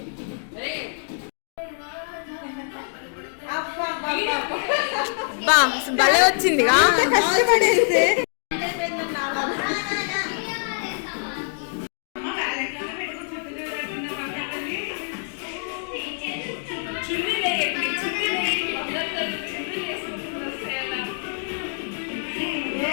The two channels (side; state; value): right; silent; digital silence